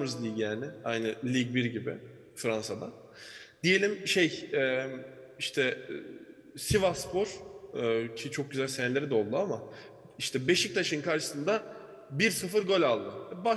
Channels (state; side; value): identical; both; correlation 1.00